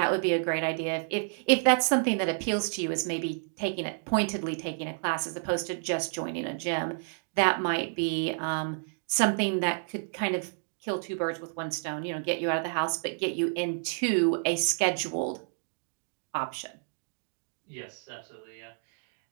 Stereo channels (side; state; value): left; silent; digital silence